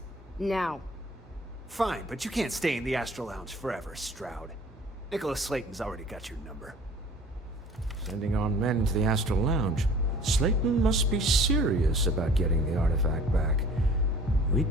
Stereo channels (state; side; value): normal; both; correlation 0.48